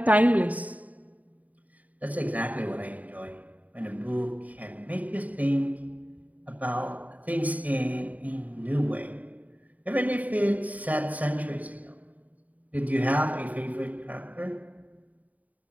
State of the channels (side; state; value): left; late; 0.072 ms